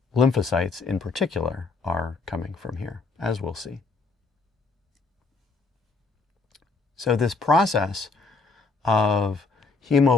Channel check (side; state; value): right; quieter; 4.0 dB